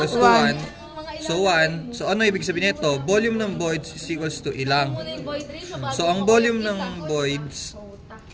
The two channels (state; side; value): identical; both; correlation 1.00